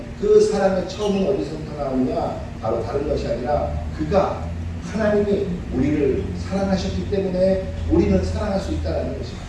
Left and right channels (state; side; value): identical; both; correlation 1.00